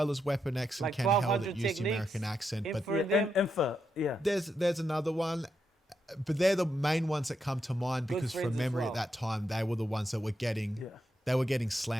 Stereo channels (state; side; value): normal; both; correlation 0.83